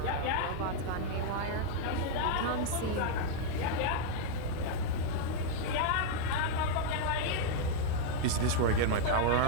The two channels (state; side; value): different; both; correlation 0.00